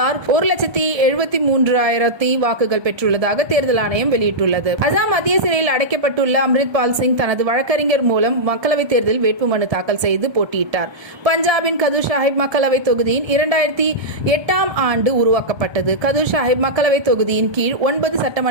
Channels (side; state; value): left; late; 1.3 ms